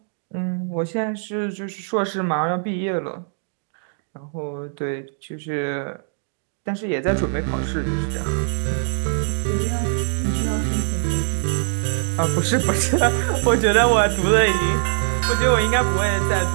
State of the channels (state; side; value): silent; left; 64 dB below the other